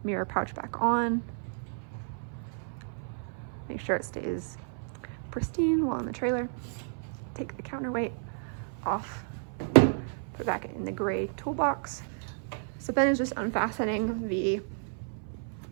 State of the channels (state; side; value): silent; left; 55 dB below the other